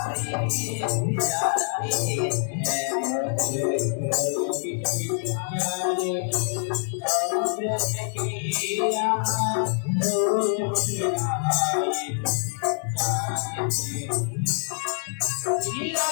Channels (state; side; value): silent; right; digital silence